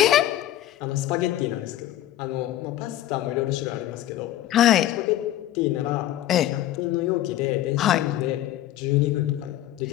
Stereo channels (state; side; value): quieter; right; 13.2 dB